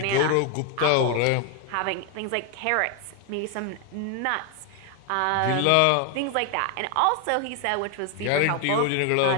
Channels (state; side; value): different; both; correlation 0.01